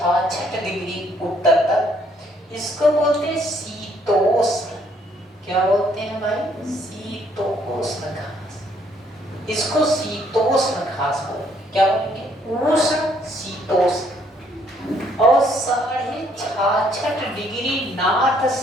डिग्री उत्तर तक, इसको बोलते हैं शीतोष्ण। क्या बोलते हैं भाई? शीतोष्ण घास। इसको शीतोष्ण घास बोलेंगे। क्या बोलेंगे? उष्ण, शीतोष्ण। और 66.5 डिग्री नॉर्थ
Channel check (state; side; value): normal; both; correlation 0.67